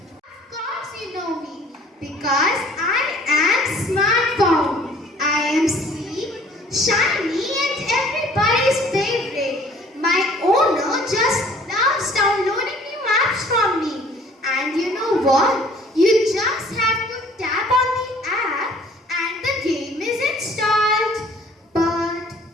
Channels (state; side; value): normal; both; correlation 0.54